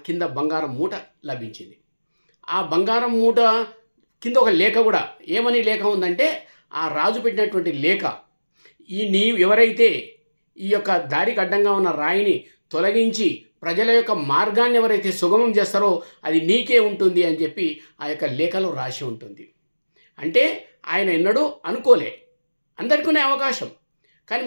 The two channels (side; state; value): both; inverted; correlation -1.00